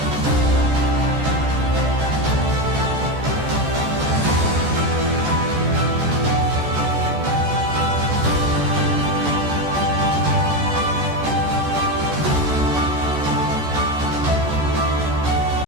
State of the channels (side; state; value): left; late; 14 ms